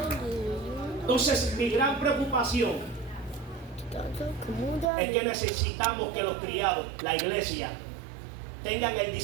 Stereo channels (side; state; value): left; drops out; at 4.9 s